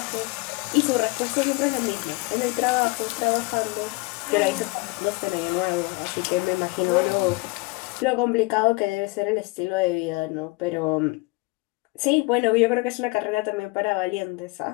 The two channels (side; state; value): right; quieter; 26.0 dB